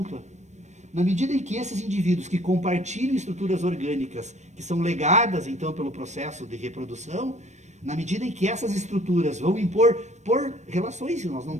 Na medida em que esses indivíduos que compartilham estruturas orgânicas, que são legadas, então, pelo processo de reprodução, na medida em que essas estruturas vão impor, por relações, nós não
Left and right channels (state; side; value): late; left; 0.34 ms